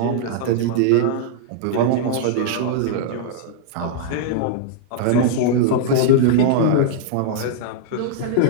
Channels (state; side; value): different; both; correlation -0.01